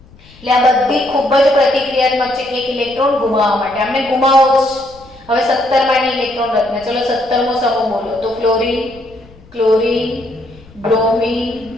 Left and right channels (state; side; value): noise; left; rumble, 24 dB below the sound